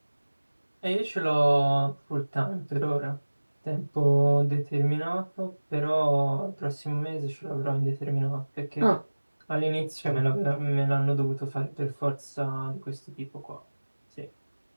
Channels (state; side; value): inverted; both; correlation -1.00